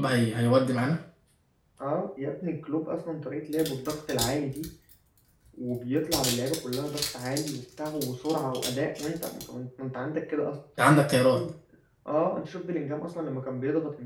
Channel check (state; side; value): identical; both; correlation 1.00